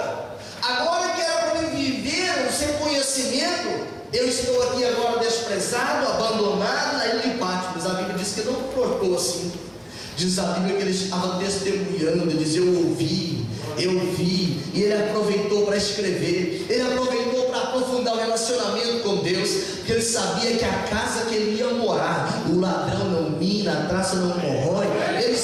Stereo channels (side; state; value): both; identical; correlation 1.00